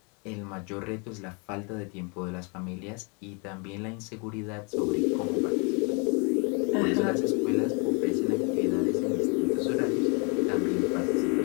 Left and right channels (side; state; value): right; quieter; 33.8 dB